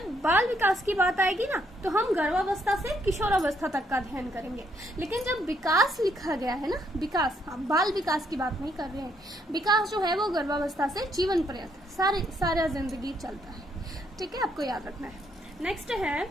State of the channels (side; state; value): both; normal; correlation 0.72